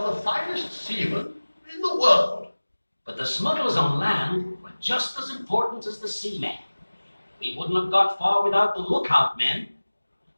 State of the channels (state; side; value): inverted; both; correlation -1.00